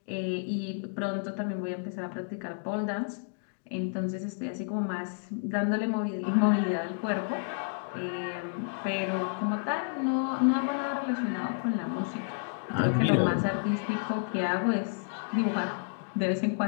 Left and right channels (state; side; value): silent; right; digital silence